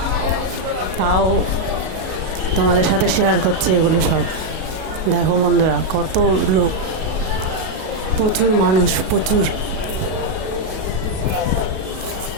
তাও তোমাদের সাথে শেয়ার করছি এগুলো সব। দেখো বন্ধুরা কত লোক, প্রচুর মানুষ, প্রচুর।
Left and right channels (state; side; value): late; left; 37 ms